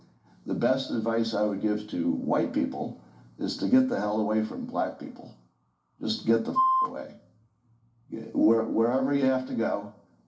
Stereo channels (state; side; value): identical; both; correlation 1.00